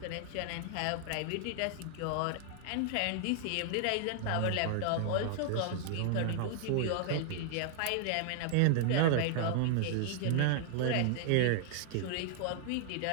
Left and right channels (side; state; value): both; different; correlation -0.01